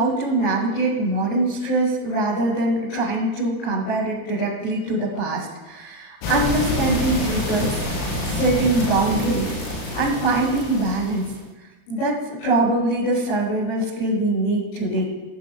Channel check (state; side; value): late; right; 36 ms